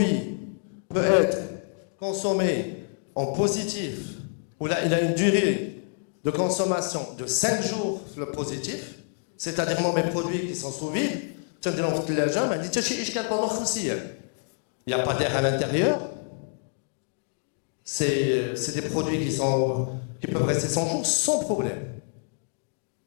peut être consommé en positif, où là, il a une durée de consommation de 5 jours le positif, c'est-à-dire moi mes produits qui sont sous vide, il n'y a pas d'air à l'intérieur, c'est des produits qui peuvent rester 100 jours sans problème.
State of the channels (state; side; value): silent; right; 60 dB below the other